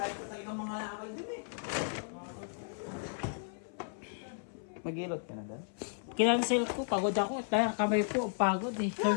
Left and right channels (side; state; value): right; silent; 55 dB below the other